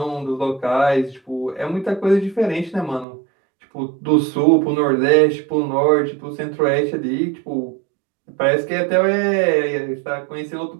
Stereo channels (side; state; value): left; drops out; at 3.1 s